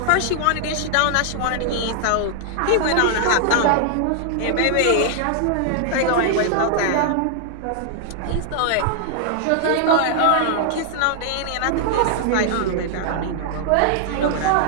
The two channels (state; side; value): different; both; correlation -0.01